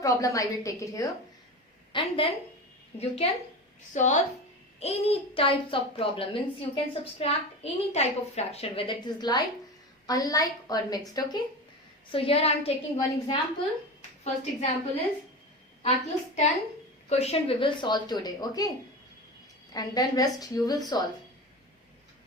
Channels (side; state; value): both; normal; correlation 0.27